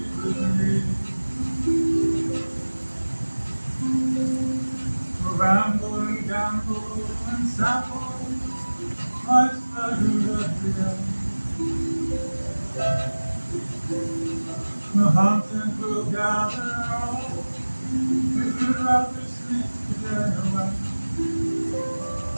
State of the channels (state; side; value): inverted; both; correlation -1.00